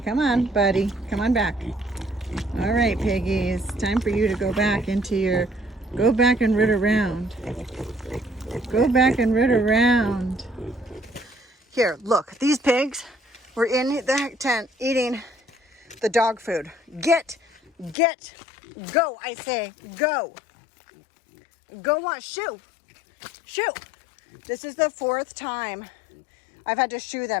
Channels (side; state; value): right; drops out; at 17.9 s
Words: come on, Buddy. Come on back. All right, piggies. Time for you to go back into your... Go back and root around. Go back and root around. Here, look. These pigs were in the tent eating the dog food. Get, go, I say, go. Go on, shoo. Shoo. This is the 4th time I've had to shoo